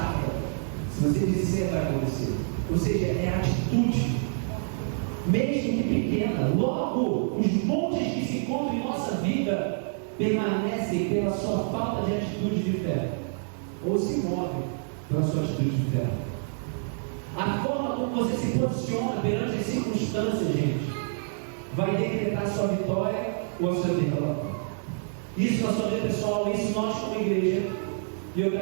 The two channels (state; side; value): silent; left; digital silence